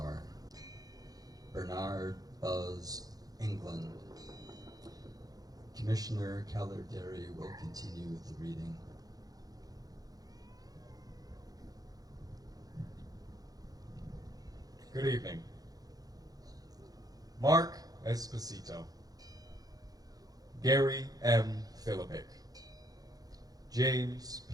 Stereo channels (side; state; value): left; late; 0.18 ms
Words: Bernard Buzz England. Commissioner Keller Derry will continue with the reading. Good evening. Mark Esposito, Gary M. Philippic, James